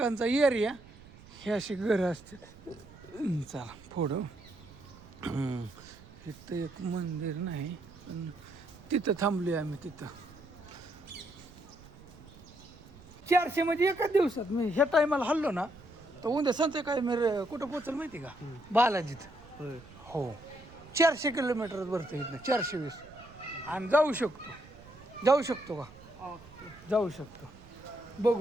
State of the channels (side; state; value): right; noise; rumble, 21 dB below the sound